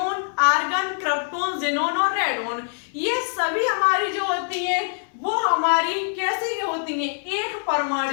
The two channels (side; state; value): right; silent; digital silence